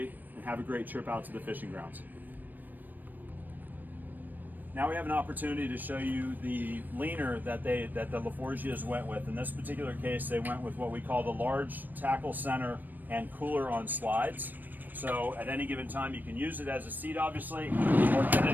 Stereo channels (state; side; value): late; left; 0.088 ms